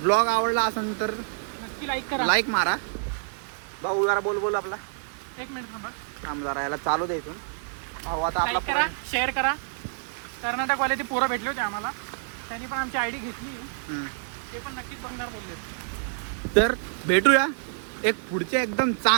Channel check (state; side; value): silent; left; digital silence